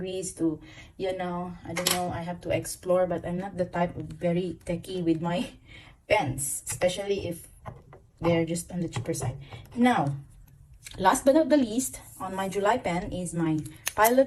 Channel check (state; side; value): identical; both; correlation 1.00